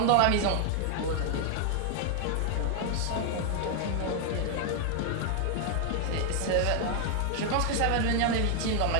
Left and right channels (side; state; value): both; different; correlation 0.00